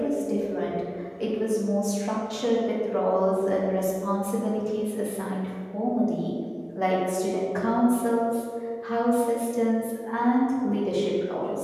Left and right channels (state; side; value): identical; both; correlation 1.00